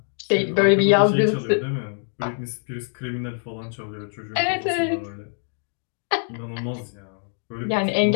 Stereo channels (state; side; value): silent; right; 57 dB below the other